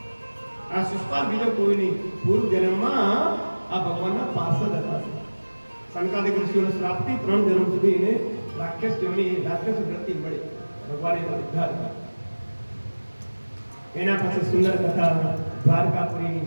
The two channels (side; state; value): both; inverted; correlation -1.00